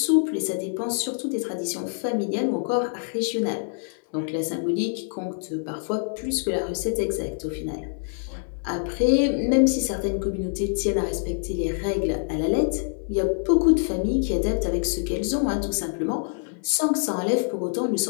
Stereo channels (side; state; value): right; silent; 61 dB below the other